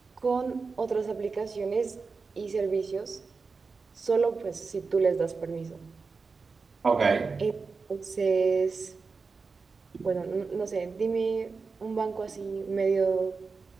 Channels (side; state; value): left; quieter; 4.6 dB